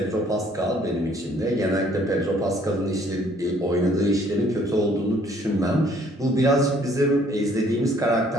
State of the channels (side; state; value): both; normal; correlation 0.61